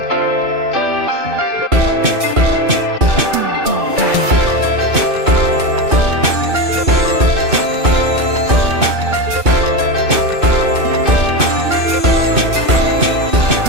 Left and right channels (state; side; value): late; left; 2.6 ms